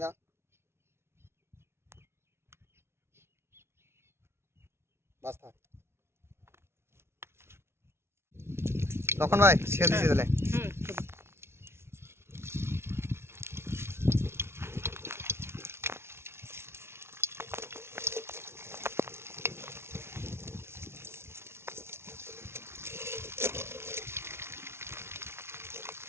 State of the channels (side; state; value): left; late; 0.12 ms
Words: দাও। বাস থাক। লক্ষণ ভাই ছেড়ে দিছি তাহলে।